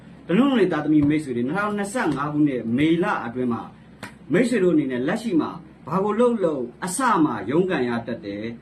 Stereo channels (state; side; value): identical; both; correlation 1.00